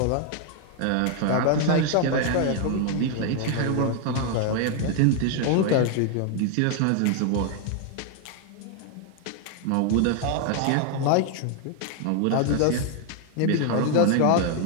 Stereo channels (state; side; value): different; both; correlation 0.00